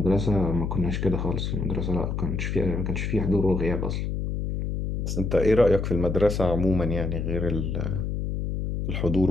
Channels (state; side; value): noise; left; hum, 2 dB below the sound